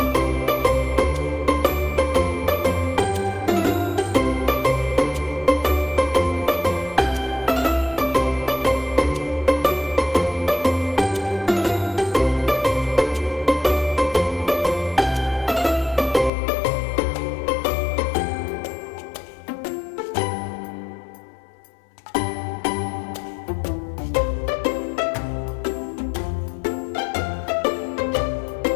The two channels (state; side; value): drops out; right; at 16.3 s